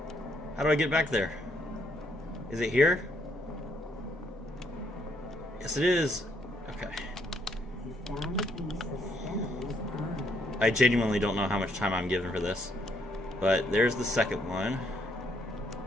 How do I get back there? Is it here? Yes, it is. Okay. You found a piece of Steno's urn. I genuinely don't know how much time I'm given for this. But there's the second one.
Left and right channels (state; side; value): normal; both; correlation 0.71